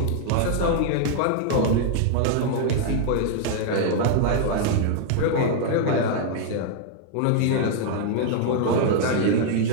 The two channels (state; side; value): different; both; correlation -0.01